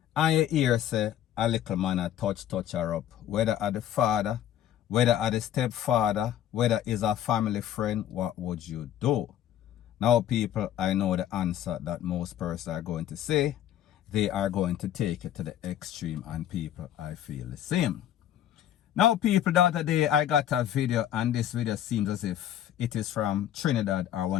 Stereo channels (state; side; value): quieter; right; 11.2 dB